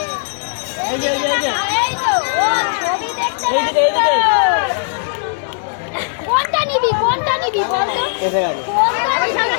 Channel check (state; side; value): silent; right; 66 dB below the other